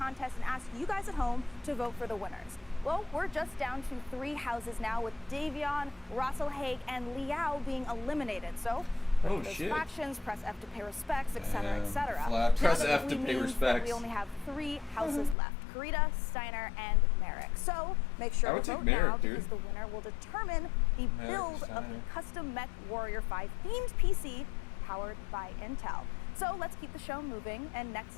and asked you guys at home to vote for the winners. Well, we're just down to 3 houses now, with Davion, Russell Haig, and Liao being eliminated. So, Oh, those shit. factions, press F to pay respects, etc., etc. Flat. Press Now that F to pay means that respects. we only have 3 houses left: Karita, Steiner, and Merrick. So make I sure would to take vote Merrick, now, dude. because the winner will determine the Merrick, build of Steiner. the custom Mech Warrior 5 themed PC powered by Intel. So let's keep the show moving. And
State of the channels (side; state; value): right; drops out; at 15.4 s